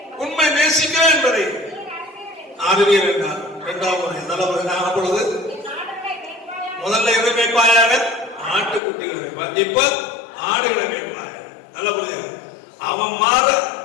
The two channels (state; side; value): drops out; right; at 8.8 s